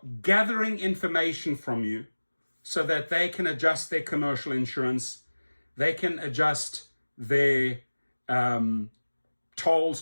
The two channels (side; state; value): both; inverted; correlation -1.00